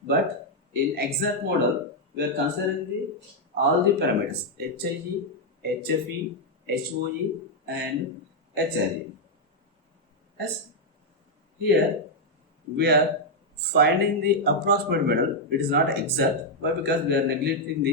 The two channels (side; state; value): both; normal; correlation -0.01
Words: but in exact model we are considering all the parameters HIG, HFE, HOE and HRE. Yes, here we are finding the approximate model. It is not exact. Why? Because we are